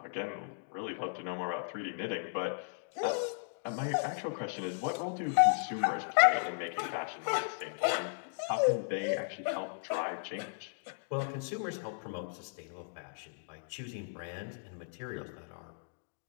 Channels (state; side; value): silent; right; digital silence